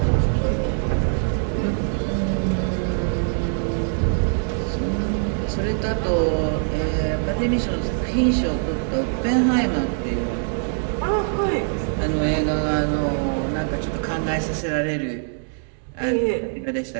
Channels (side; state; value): left; silent; 63 dB below the other